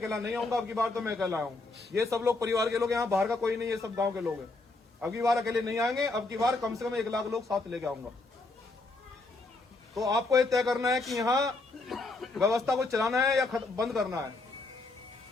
नहीं आऊंगा, अब की बार तो मैं अकेला आऊं। ये सब लोग परिवार के लोग, यहाँ बाहर का कोई नहीं, ये सब गांव के लोग हैं। अब की बार अकेले नहीं आएंगे, अब की बार कम से कम 1 लाख लोग साथ लेके आऊंगा। तो आपको ये तय करना है कि यहाँ व्यवस्था को चलाना है या बंद करना है।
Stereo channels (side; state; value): right; quieter; 3.3 dB